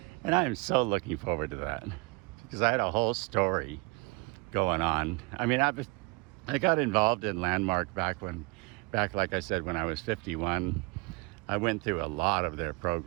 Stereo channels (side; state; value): left; quieter; 27.2 dB